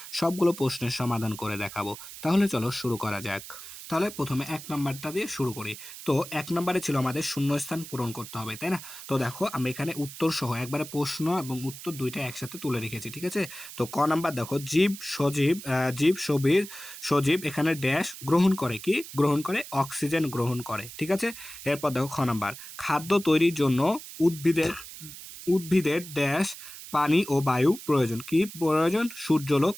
সবগুলো প্রশ্নের সমাধান করে দেখাবো। তাহলে চলো শুরু করা যাক। তাহলে প্রথমে 1 নাম্বারটা দিয়ে শুরু করি। তো 1 নাম্বারে ছিল আমাদের শূন্যস্থান পূরণ করতে হবে, তাই না? তো দেখো আমি এখানে উত্তর সহ একবারে প্রশ্ন এবং উত্তর দুইটা একসাথে তুলে রেখেছি, ঠিক আছে? তো ক নাম্বার দেখো সজীব এখানে ড্যাশ গ্রহণ করে, কি গ্রহণ করে? অক্সিজেন গ্রহণ করে, ঠিক আছে? এরপর দেখো খ নাম্বার, খাদ্য তৈরির জন্য উদ্ভিদের উদ্ভিদের ড্যাশ পানি ও বায়ু প্রয়োজন, কি প্রয়োজন? সূর্যালোক,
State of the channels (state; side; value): noise; right; hiss, 13 dB below the sound